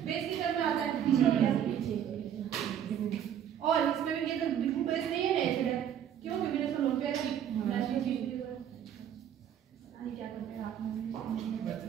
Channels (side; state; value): left; quieter; 9.6 dB